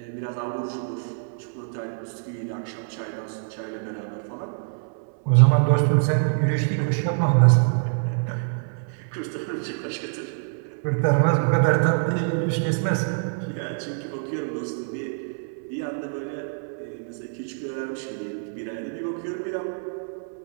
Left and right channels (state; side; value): silent; left; 61 dB below the other